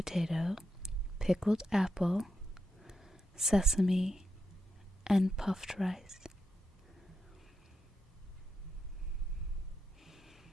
pickled apple, sesame, and puffed rice.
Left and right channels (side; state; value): both; normal; correlation 0.84